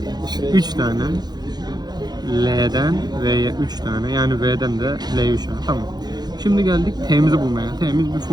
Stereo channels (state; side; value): late; left; 0.20 ms